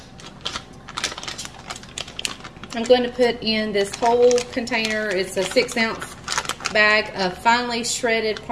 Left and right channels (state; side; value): identical; both; correlation 1.00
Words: I'm going to put in this whole container. It's a 6-ounce bag of finely shredded